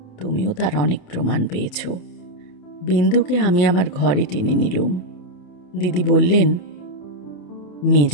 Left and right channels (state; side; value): late; right; 28 ms